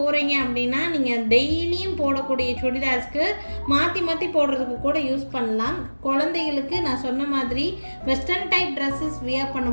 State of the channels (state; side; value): inverted; both; correlation -1.00